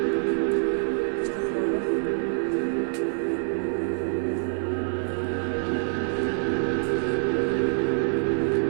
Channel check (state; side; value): silent; left; 57 dB below the other